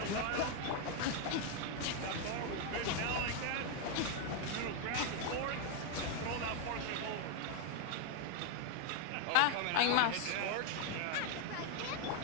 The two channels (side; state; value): both; different; correlation 0.01